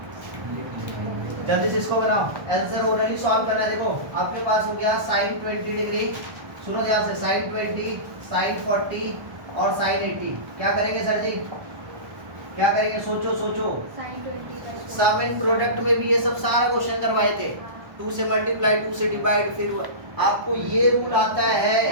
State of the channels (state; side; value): late; left; 1.3 ms